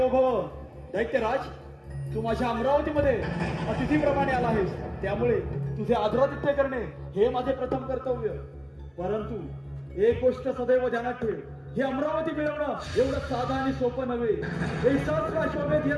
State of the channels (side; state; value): both; identical; correlation 1.00